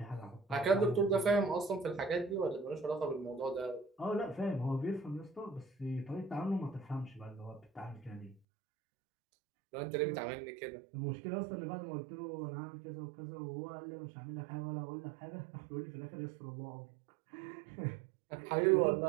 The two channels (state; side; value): drops out; left; at 8.4 s